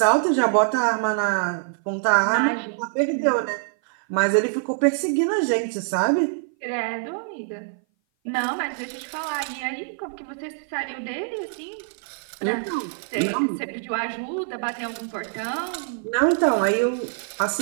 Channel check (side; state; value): left; silent; 57 dB below the other